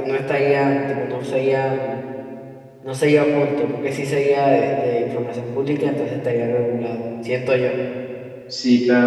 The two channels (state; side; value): identical; both; correlation 1.00